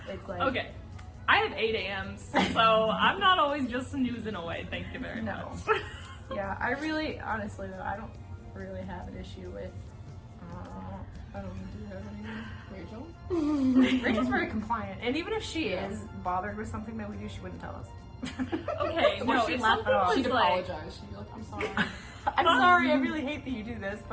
it's like Okay. I have 8 a.m.s, so I'm not always just snoozing away. Thank you very No. much. Yeah, I really, honestly though, I don't really have an issue with. I don't do you have anything. Rachel? Rachel's very compliant, and even if she is bothered with something that we do, she wouldn't tell us. Okay, no, she'd if laugh it something off. was She'd like, apologize. She'd be like, I'm sorry. I'm sorry, I really hate that you do this,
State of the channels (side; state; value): both; identical; correlation 1.00